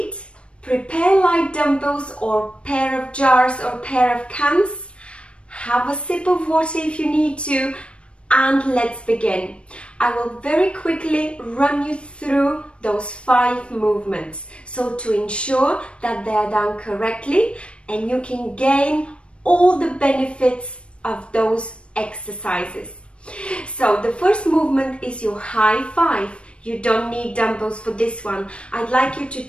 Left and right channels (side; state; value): right; late; 0.059 ms